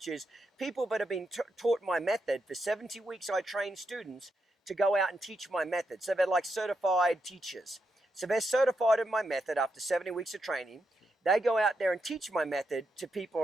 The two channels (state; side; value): normal; both; correlation 0.83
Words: is people that have been taught my method. For 70 weeks, I train students to go out and teach my method. So they're like certified teachers. So they're certified in my method after 70 weeks of training. They go out there and teach my method to people